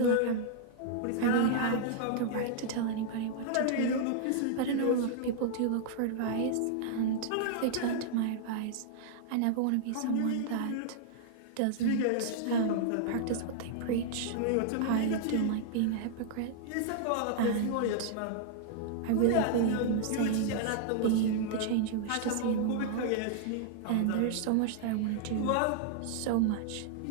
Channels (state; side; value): different; both; correlation -0.01